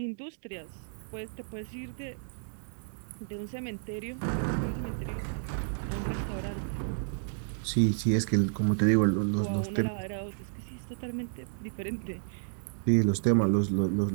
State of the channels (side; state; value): left; silent; digital silence